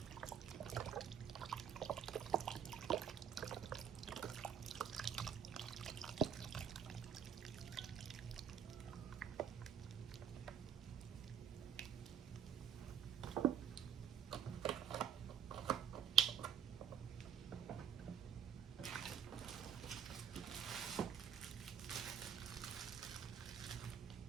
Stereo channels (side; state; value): left; quieter; 8.3 dB